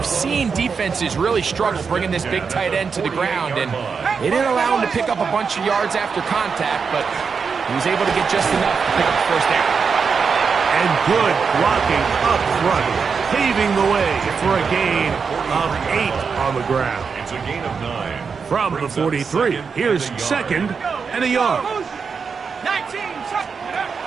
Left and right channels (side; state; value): left; quieter; 5.6 dB